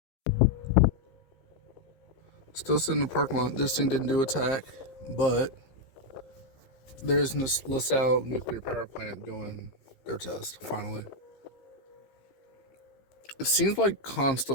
Still sitting in the parking lot. This thing didn't do attack, but there's this LaSalle nuclear power plant doing their test, finally. It seems like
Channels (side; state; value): right; late; 15 ms